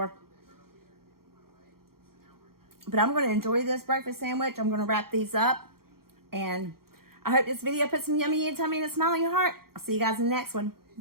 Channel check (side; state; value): left; late; 0.94 ms